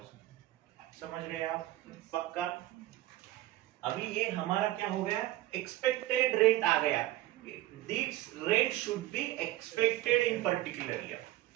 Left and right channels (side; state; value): left; quieter; 16.2 dB